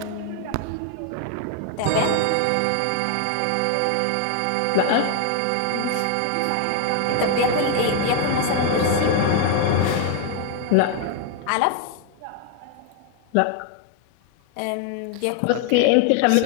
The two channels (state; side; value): different; both; correlation 0.00